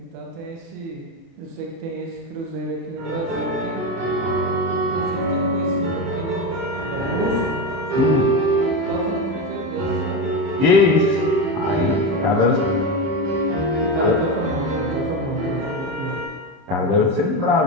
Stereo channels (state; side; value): late; left; 30 ms